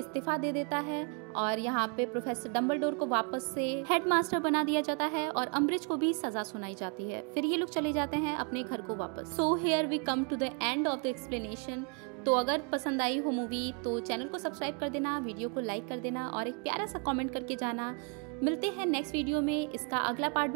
दे देता है और यहाँ पे प्रोफेसर डंबलडोर को वापस से हेडमास्टर बना दिया जाता है और अम्बरिज को भी सजा सुनाई जाती है। फिर ये लोग चले जाते हैं अपने घर को वापस। So here we come to the end of the explanation. तो अगर पसंद आई हो मूवी तो चैनल को सब्सक्राइब कर देना, वीडियो को लाइक कर देना और एक प्यारा सा कमेंट करके जाना। मिलते हैं नेक्स्ट वीडियो में। इसका अगला पार्ट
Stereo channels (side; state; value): left; quieter; 37.4 dB